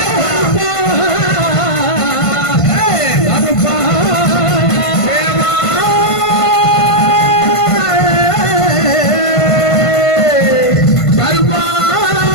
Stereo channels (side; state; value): right; late; 1.5 ms